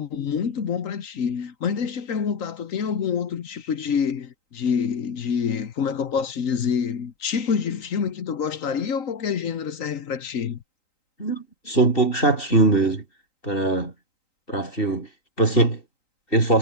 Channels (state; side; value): late; right; 3.9 ms